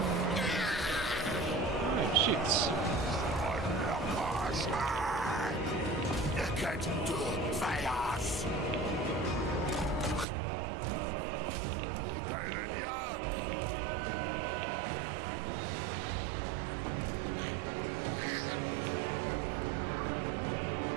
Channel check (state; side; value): drops out; left; at 10.2 s